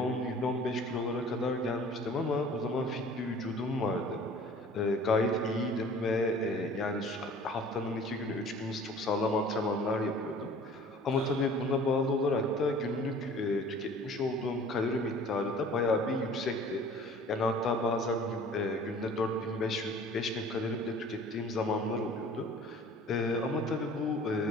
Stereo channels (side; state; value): both; normal; correlation 0.48